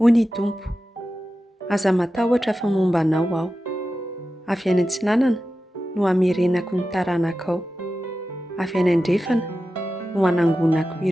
Hony Tompo, aza matahotra fa momba anao aho. Avy any antsinanana no hamerenako ny taranakao. Avy any andrefana no hanangonako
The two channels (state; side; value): normal; both; correlation 0.93